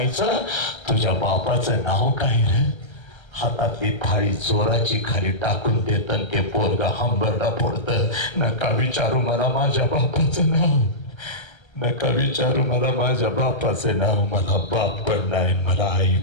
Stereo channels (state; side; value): late; right; 1.3 ms